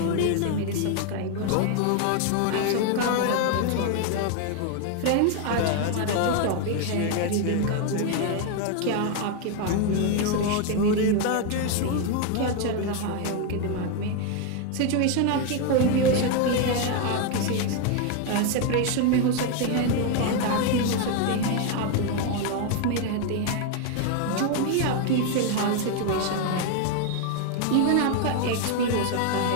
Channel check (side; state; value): both; different; correlation 0.01